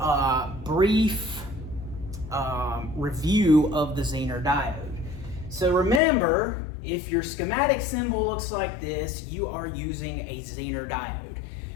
brief review of the Zener diode. So remember, if your schematic symbol looks like this, you are using a Zener diode.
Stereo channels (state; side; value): drops out; right; at 6.0 s